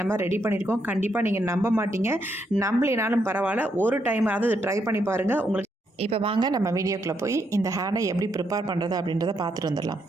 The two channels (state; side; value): normal; both; correlation 0.78